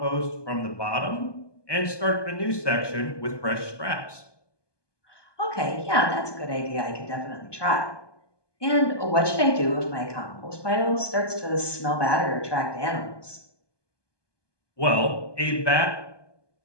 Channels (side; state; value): right; late; 1.2 ms